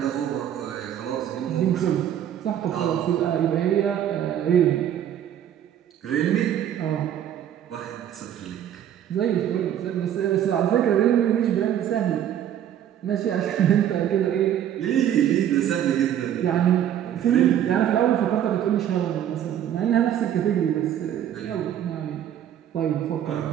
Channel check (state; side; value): quieter; left; 10.4 dB